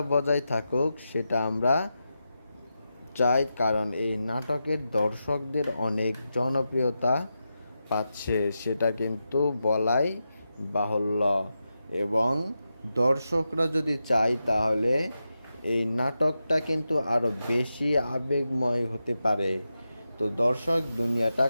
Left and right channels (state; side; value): inverted; both; correlation -0.89